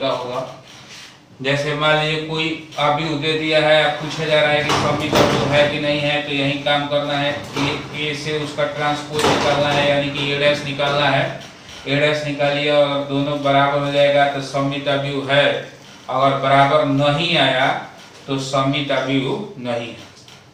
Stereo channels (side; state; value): both; identical; correlation 1.00